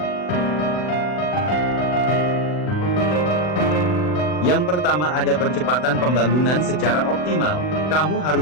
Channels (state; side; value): late; right; 40 ms